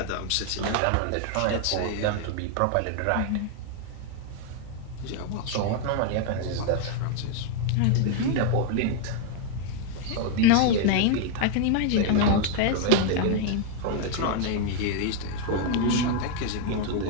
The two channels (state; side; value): different; both; correlation 0.00